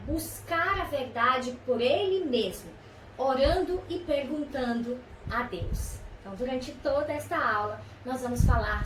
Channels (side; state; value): both; identical; correlation 1.00